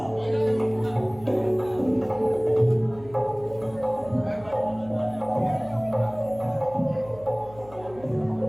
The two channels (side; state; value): left; noise; hum, 21 dB below the sound